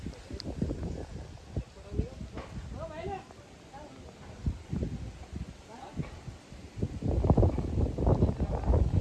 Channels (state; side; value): identical; both; correlation 1.00